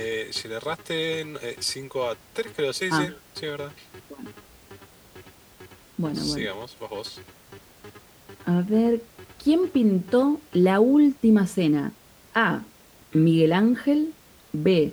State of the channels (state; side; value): identical; both; correlation 1.00